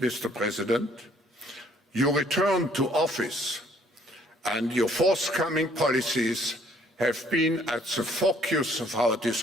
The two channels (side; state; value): both; normal; correlation 0.61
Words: President, your return to office and your forthcoming policies have been at the focus of our